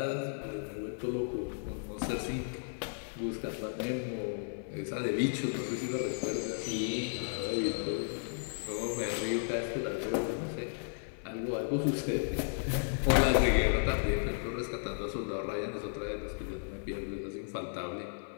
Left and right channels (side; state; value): right; silent; 55 dB below the other